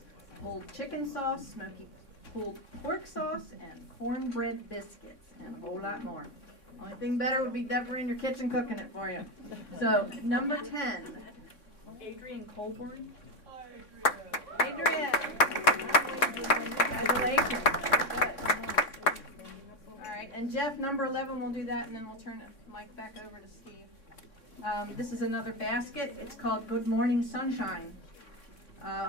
pulled chicken sauce, smoky pulled pork sauce, and cornbread biscuits, and a whole lot more. Only thing better would be Deborah in your kitchen cooking it for you. So, number 10, Adrian Colburn. Adrian! Congratulations. Good. All right, and Jeff, number 11, we'll do that, and then we'll turn the mic back over to Steve. This is another basket. It's called Good Morning Sunshine.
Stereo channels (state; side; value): late; right; 3.6 ms